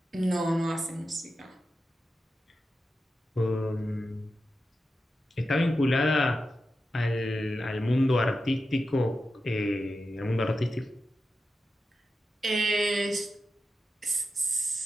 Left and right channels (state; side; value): normal; both; correlation 0.90